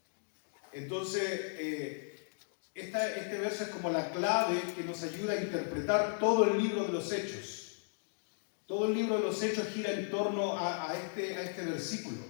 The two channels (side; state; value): right; silent; digital silence